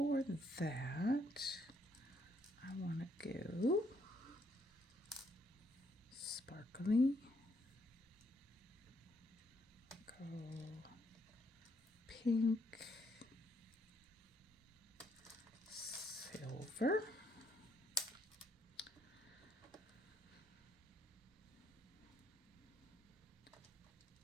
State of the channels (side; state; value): both; normal; correlation 0.72